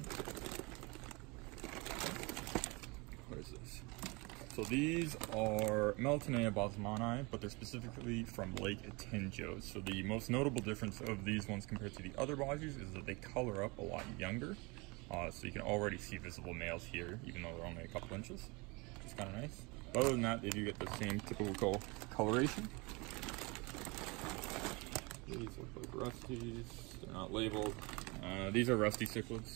what is this? So these are Melatonea bosmani, but they're specifically from Lake Atinjo. So the most notable difference of these ones compared to the other bosses is that they color up a lot younger. So you can already see visible males here, even though they're only a couple inches, which is kind of nice. But other than that, they do get the same typical coloration. These look like rusties. They're not labeled. These are rusty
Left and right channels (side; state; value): left; quieter; 27.2 dB